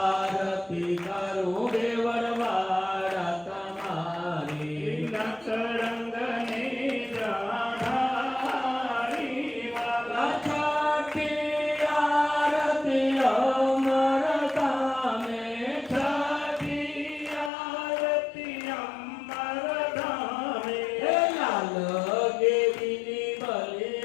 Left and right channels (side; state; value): right; drops out; at 17.5 s